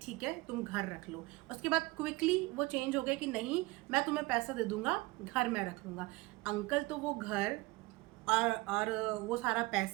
ठीक है तुम घर रख लो, उसके बाद क्विकली वो चेंज हो गया कि नहीं मैं तुम्हें पैसा दे दूंगा, घर मैं रख लूँगा। अंकल तो वो घर और वो सारा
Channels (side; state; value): left; quieter; 22.3 dB